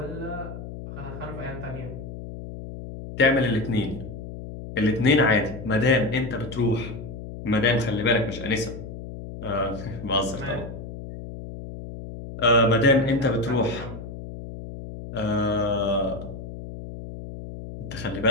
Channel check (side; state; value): left; noise; hum, 10 dB below the sound